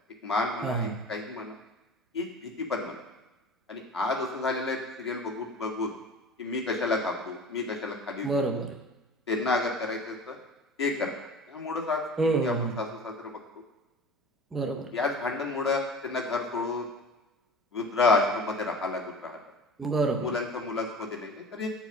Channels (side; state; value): both; normal; correlation 0.38